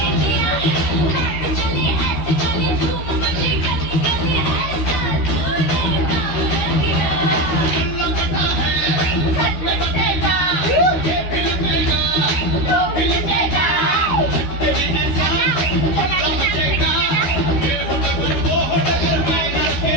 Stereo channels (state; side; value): late; right; 12 ms